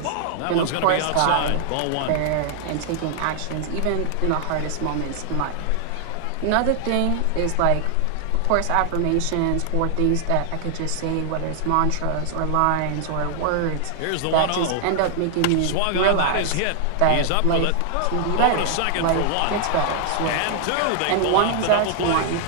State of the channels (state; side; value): different; both; correlation 0.00